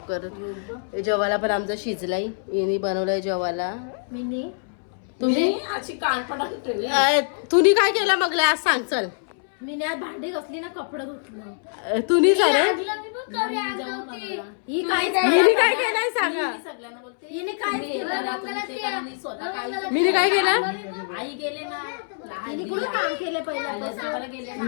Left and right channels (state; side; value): silent; right; 62 dB below the other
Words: करत. जेवायला पण आमचा शिजलाय, यांनी बनवलंय जेवायला. तुम्ही अशी कानपडा ठेवली. तुम्ही काय केलं मग आज सांग चल. मी आज भांडी घासली ना, कपडे धुतलं. तुम्ही सर ही काय मी काय केलंय सांगा. सगळ्यांना बोलते हिने काय केलं. स्वतः काय मी काय केलं. आई गेले ना, हिने कुठं काम केले पहिल्यापासून गेले